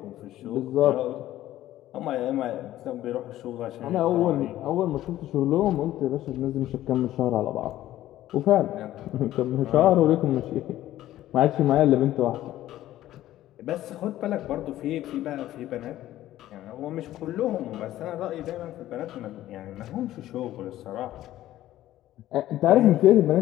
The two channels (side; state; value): right; quieter; 14.0 dB